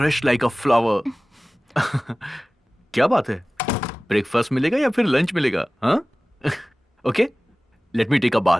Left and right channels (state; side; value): normal; both; correlation 0.98